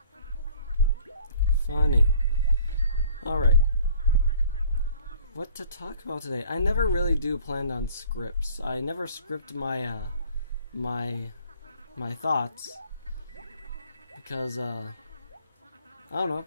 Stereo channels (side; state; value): both; inverted; correlation -0.54